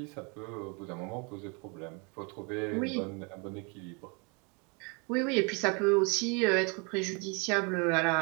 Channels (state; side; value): quieter; left; 33.2 dB